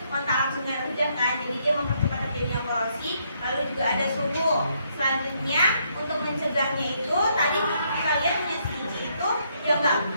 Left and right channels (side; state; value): both; inverted; correlation -0.73